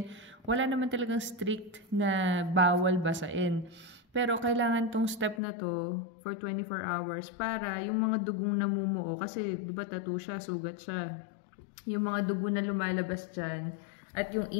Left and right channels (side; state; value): right; drops out; at 5.4 s